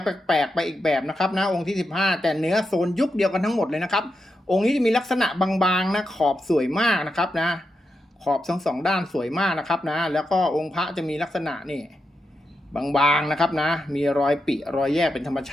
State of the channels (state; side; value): normal; both; correlation 0.86